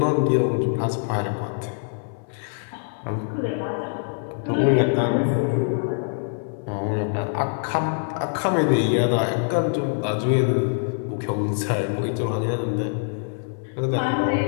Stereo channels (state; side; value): silent; right; 62 dB below the other